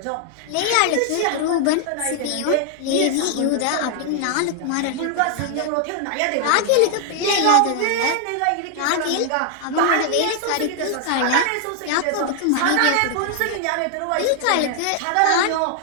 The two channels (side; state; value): both; different; correlation 0.00